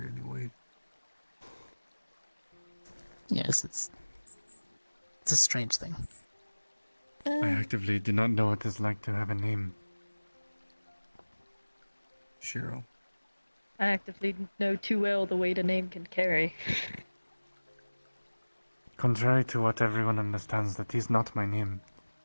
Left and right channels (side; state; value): both; inverted; correlation -1.00